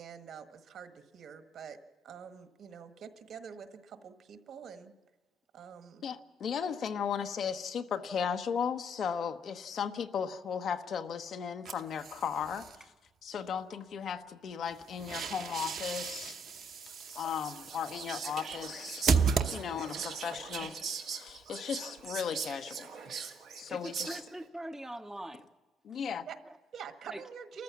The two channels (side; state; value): both; normal; correlation 0.68